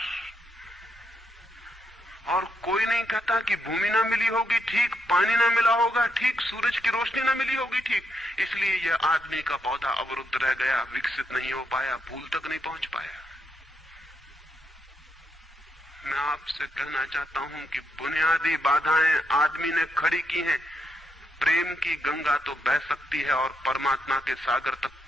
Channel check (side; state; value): both; normal; correlation 0.79